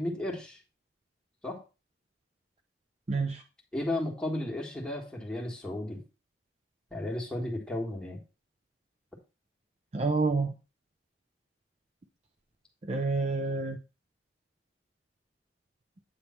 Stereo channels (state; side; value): normal; both; correlation 0.70